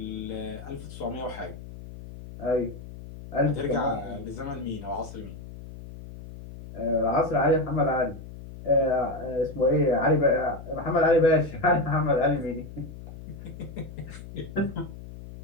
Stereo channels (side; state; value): left; noise; hum, 13 dB below the sound